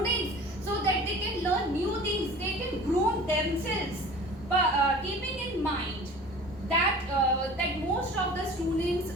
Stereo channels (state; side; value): normal; both; correlation 0.42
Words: so that they can learn new things, they can groom themselves. But keeping in mind that most of the